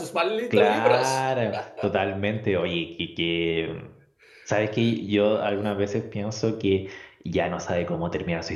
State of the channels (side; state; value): both; identical; correlation 1.00